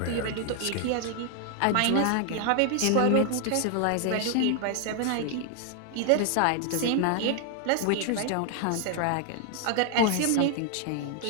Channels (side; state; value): both; different; correlation 0.00